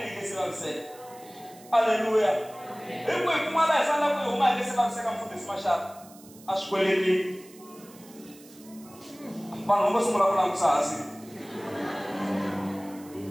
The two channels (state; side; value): noise; right; hiss, 22 dB below the sound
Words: hi nge se vaviseka aleluya hi ku hi kuma laha hi faneleke ku hi huma hi nge se vaviseka mfundhisi Maxaka a swikweletini vanhu ngo sungula ku langusa hansi